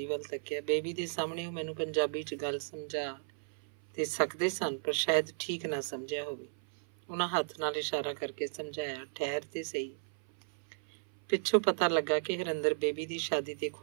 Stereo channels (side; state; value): left; silent; 55 dB below the other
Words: ਵੱਲ ਤੱਕਿਆ। ਬੇਬੀ ਦੇ ਸਾਹਮਣੇ ਉਹ ਮੈਨੂੰ ਪੰਜਾਬੀ 'ਚ ਗੱਲ ਸਮਝਾ ਤੇ ਸਕਦੇ ਸਨ, ਪਰ ਸ਼ਾਇਦ ਠੀਕ ਨਾ ਸਮਝਿਆ ਹੋਵੇ। ਉਹਨਾਂ ਹੱਥ ਨਾਲ ਇਸ਼ਾਰਾ ਕਰਕੇ ਸਮਝਾਇਆ, ਠਹਿਰ ਤੇ ਸਹੀ। ਪਿੱਛੋਂ ਪਤਾ ਲੱਗਾ ਕਿ ਹਰਿੰਦਰ ਬੇਬੀ ਦੀ ਸ਼ਾਦੀ ਤੇ